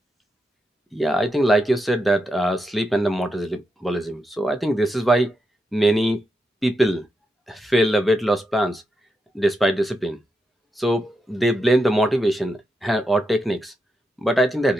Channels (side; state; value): both; normal; correlation 0.85